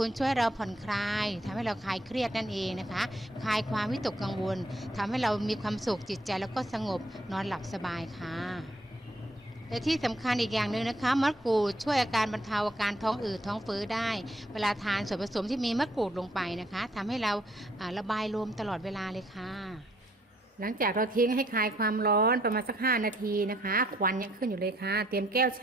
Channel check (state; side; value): normal; both; correlation 0.68